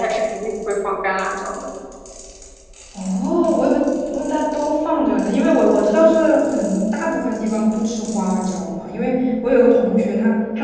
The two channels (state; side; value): identical; both; correlation 1.00